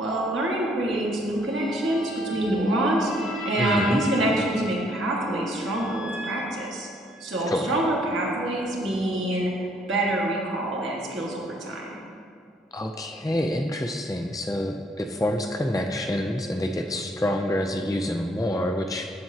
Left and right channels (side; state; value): both; normal; correlation 0.66